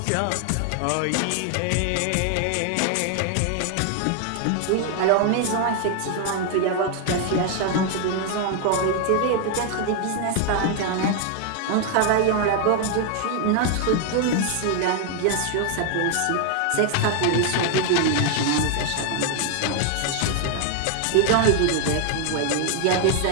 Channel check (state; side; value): different; both; correlation 0.00